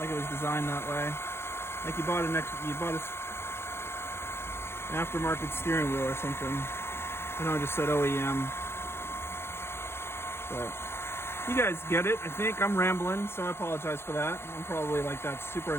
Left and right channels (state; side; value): late; right; 0.12 ms